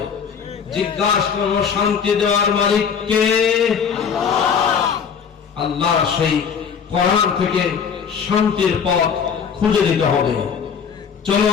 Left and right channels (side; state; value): right; quieter; 6.9 dB